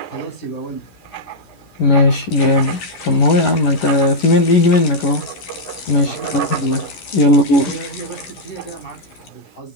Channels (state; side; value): late; right; 11 ms